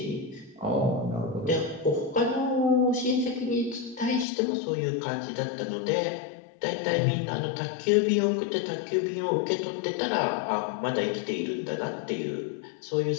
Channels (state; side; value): drops out; right; at 4.2 s